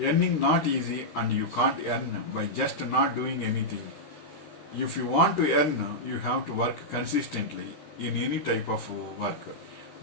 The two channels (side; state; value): right; late; 13 ms